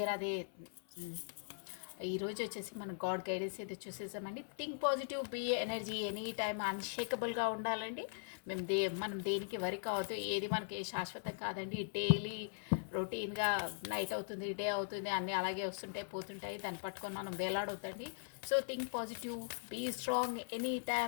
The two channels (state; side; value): silent; right; 51 dB below the other